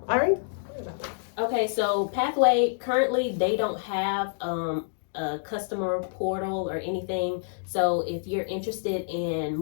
All right. Okay, so Pathway, currently they don't have a customer portal or anything. So if you're interested in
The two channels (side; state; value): right; silent; digital silence